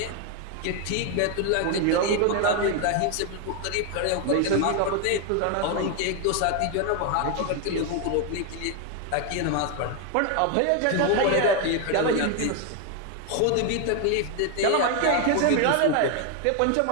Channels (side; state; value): both; different; correlation 0.01